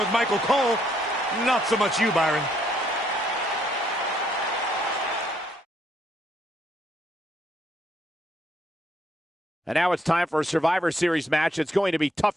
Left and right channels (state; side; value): normal; both; correlation 0.71